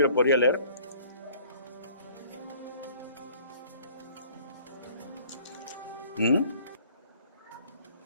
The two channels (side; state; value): both; inverted; correlation -0.54